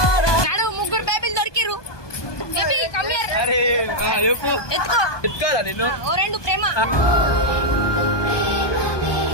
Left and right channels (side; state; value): right; late; 1.2 ms